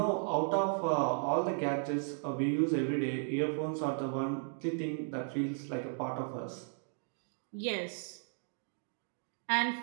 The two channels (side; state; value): left; silent; 54 dB below the other